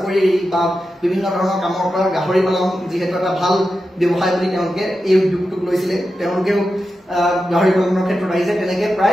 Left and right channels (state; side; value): normal; both; correlation 0.90